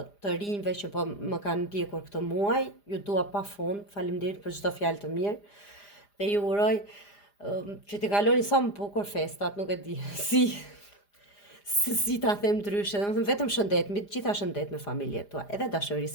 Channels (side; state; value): right; late; 4.9 ms